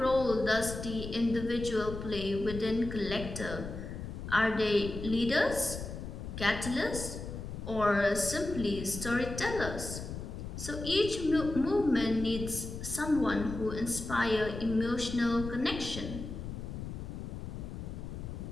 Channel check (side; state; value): left; noise; rumble, 8 dB below the sound